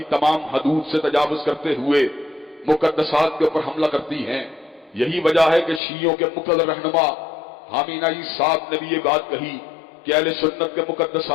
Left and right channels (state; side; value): drops out; right; at 5.8 s